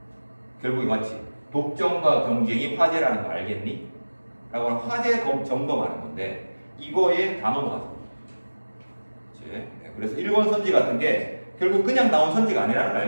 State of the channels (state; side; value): inverted; both; correlation -1.00